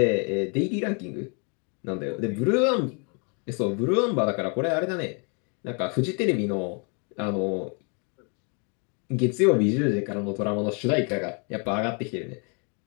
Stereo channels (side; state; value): right; quieter; 36.9 dB